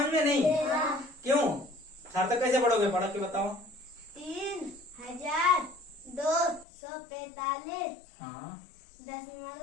में? नहीं क्यों? सार्थक कैसे पढ़ोगे? पढ़ो के बताओ। 3,245 हाँ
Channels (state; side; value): drops out; right; at 6.7 s